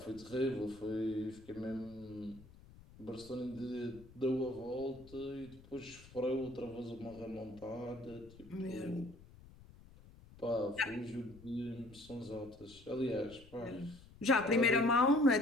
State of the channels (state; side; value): noise; left; rumble, 21 dB below the sound